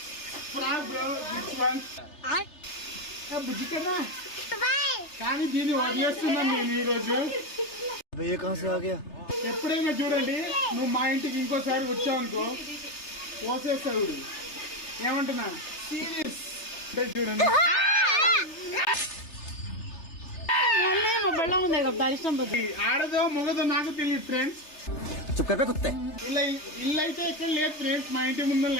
కానీ దీన్ని వదిలేస్తున్నాను నేను ఈ రోజు. ఎప్పుడైనా చూడండి, నువ్వు మా ఇంటికి ఇంకోసారి వచ్చావనుకో పోసేస్తాడు. ఏమంటున్నా సీరియస్ చూడండి. ఆడదో మొగదో నాకు తెలియదు ఫ్రెండ్స్. ఇల్లు అయితే ఎక్కడ లేదు ఫ్రెండ్స్, మా ఇంటి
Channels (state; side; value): late; right; 3.3 ms